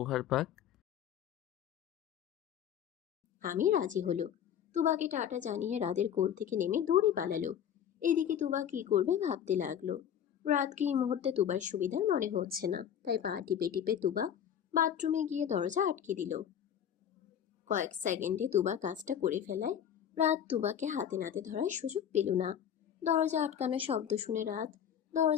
পাক? আমি রাজি হলো। তুবাকে টাটা জানিয়ে রাতের কোল থেকে নেমে দৌড়ে পালালো। এদিকে তুবা কি করবে ভাবতে লাগলো। রাতকে এই মুহূর্তে তুবার সুবিধার মনে হচ্ছে না, তাই পা টিপে টিপে তুবা বাথরুমে গিয়ে দরজা আটকে দিল। কয়েক সেকেন্ডে তুবা কাজটা করে ফেলায় রাত তুবাকে হাতে নাতে ধরার সুযোগ পেল না। দরজা আটকানো শব্দ শুনে রাত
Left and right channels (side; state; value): right; quieter; 9.2 dB